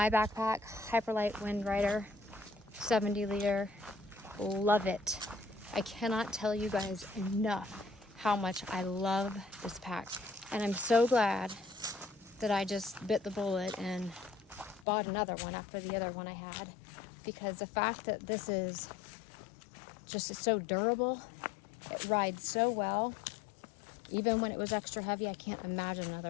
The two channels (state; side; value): drops out; right; at 14.9 s